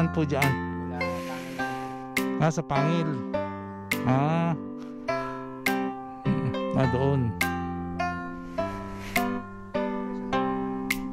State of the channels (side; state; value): both; identical; correlation 1.00